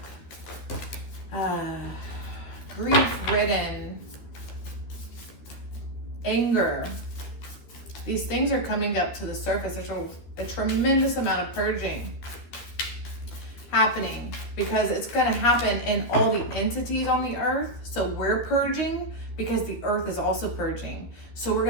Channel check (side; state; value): right; late; 12 ms